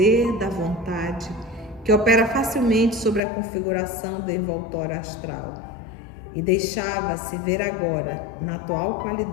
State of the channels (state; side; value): drops out; right; at 3.2 s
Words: da vontade, que opera facilmente sobre a configuração do envoltório astral, e deixava-se ver agora, na atual